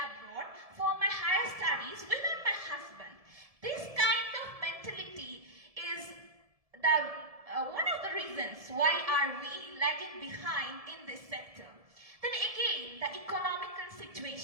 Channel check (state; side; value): late; left; 1.7 ms